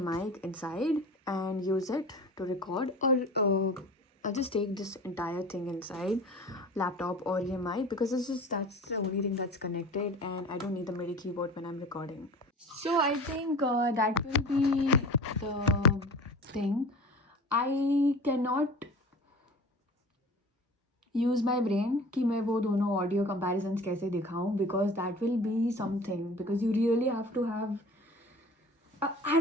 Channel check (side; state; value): both; normal; correlation 0.39